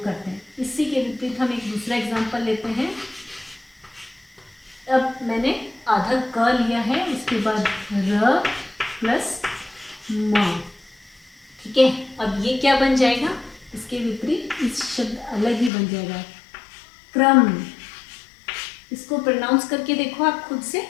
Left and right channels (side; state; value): right; drops out; at 15.7 s